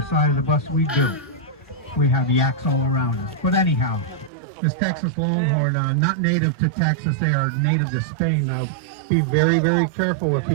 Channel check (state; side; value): drops out; left; at 4.3 s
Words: side of the bus. We do. we have yaks all around us. But anyhow, this Texas longhorn, not native to Texas, they are native to Spain. Now, be very, very careful if he